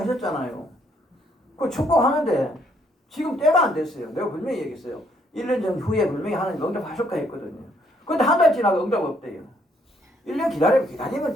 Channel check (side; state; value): both; normal; correlation 0.69